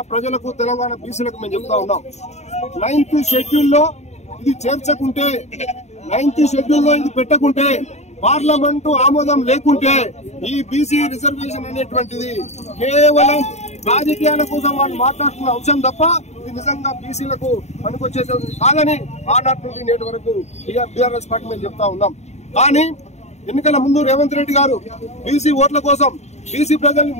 ప్రజలకు తెలంగాణ బీసీలకు మేము చెప్తా ఉన్నాం. 9th షెడ్యూల్లో ఇది చేర్చకుంటే 9th షెడ్యూల్లో ఇది పెట్టకుంటే పార్లమెంటు ఆమోదం లేకుంటే ఈ బీసీ రిజర్వేషన్ అనేటువంటిది కేవలం రాజకీయాల కోసం వాళ్ళు మాట్లాడుతున్న అంశం తప్ప ఇది నిజంగా బీసీలకు పనికొచ్చేది కాదని ఆనాటి నుండి నేటి వరకు టీఆర్ఎస్ పార్టీ మేము చెప్తా ఉన్నాం. కానీ ఎన్నికల ముందు రేవంత్ రెడ్డి గారు బీసీ ఓట్ల కోసం బీసీ ప్రజల్ని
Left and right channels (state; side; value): late; right; 0.32 ms